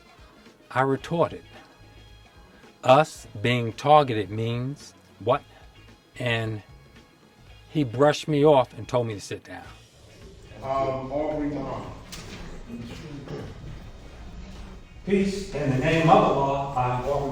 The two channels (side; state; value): both; identical; correlation 1.00